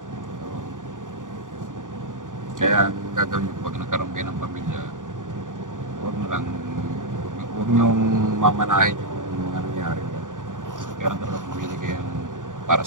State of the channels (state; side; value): late; left; 0.88 ms